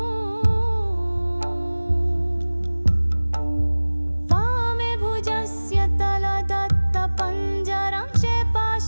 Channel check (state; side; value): inverted; both; correlation -1.00